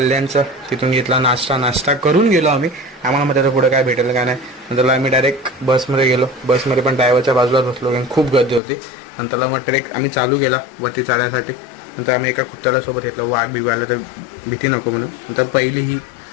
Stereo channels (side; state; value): right; drops out; at 8.6 s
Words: तिथून घेतला नाश्ता करून गेलो आम्ही. आम्हाला मग त्याचं पुढं काय भेटेल का नाही. नंतर आम्ही डायरेक्ट बसमध्ये गेलो. बसमध्ये पण ड्रायव्हरच्या बाजूलाच बसलो कारण खूप गर्दी होती. नंतरला मग ट्रेक आम्ही चालू केला वरती चढण्यासाठी. नंतर आम्ही एका कुत्र्याला सोबत घेतलं. वाघ बिघायला तर भीती नको म्हणून. नंतर पहिली ही